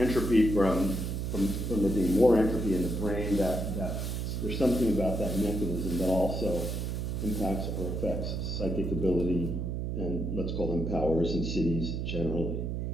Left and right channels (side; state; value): right; noise; hum, 2 dB below the sound